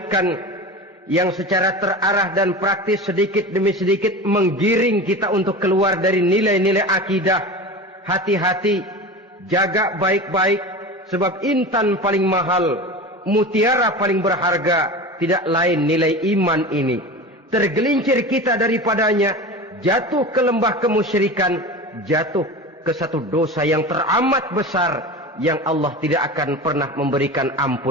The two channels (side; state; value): both; normal; correlation 0.30